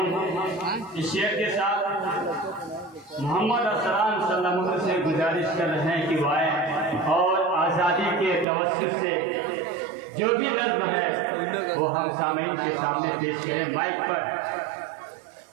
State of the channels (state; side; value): drops out; left; at 8.5 s